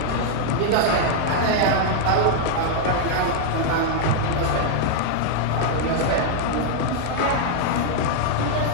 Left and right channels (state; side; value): different; both; correlation 0.00